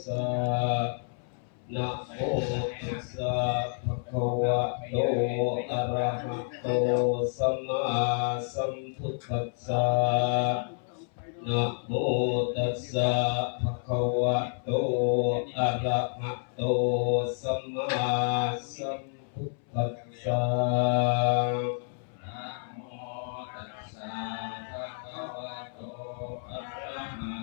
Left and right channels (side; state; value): right; silent; 58 dB below the other